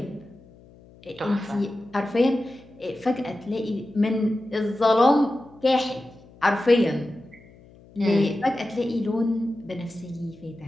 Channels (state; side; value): noise; left; hum, 24 dB below the sound